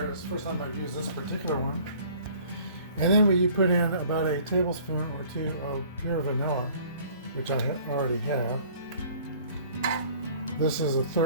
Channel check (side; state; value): both; inverted; correlation -0.53